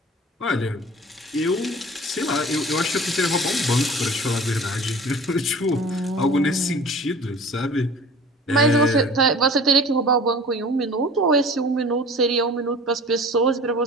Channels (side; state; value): both; normal; correlation 0.42